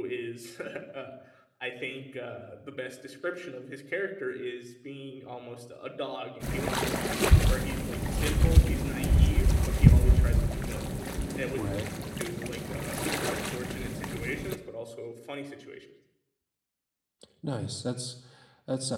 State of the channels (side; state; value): both; identical; correlation 1.00